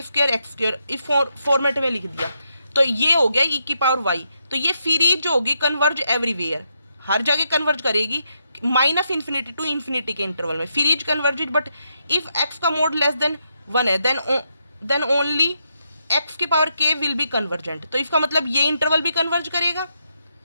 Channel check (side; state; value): both; inverted; correlation -0.80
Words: स्क्वायर एक्स स्क्वायर इस फॉर्मेट में लिख दिया, तो ये हो गया e की पावर y। तो ये सीरीज जो होगी कन्वर्ज एवरीवेयर, हर जगह कन्वर्ज करेगी -∞ to इन्फिनिटी के इंटरवल में, series converged, but if x का मोड लेस देन 1 है देन ओनली x की power k will be convergent. तो इसका मतलब ये इंटरवल भी कन्वर्ज करेगा